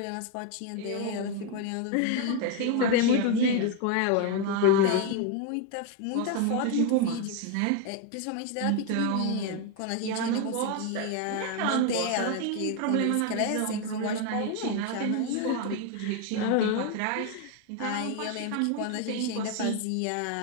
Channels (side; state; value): both; different; correlation 0.01